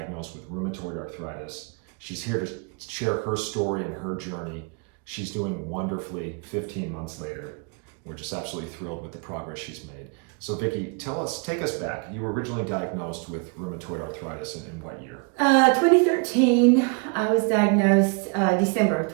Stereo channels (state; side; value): quieter; left; 35.3 dB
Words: with rheumatoid arthritis. She's here to share her story and her journey. She's doing wonderfully 15 months later. We're just absolutely thrilled with the progress she's made. So Vicki, take us back. You were originally diagnosed with rheumatoid arthritis in what year? 2013, I was diagnosed December of